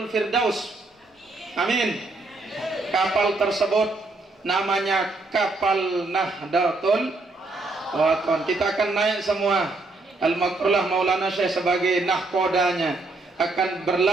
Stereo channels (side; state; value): left; quieter; 3.3 dB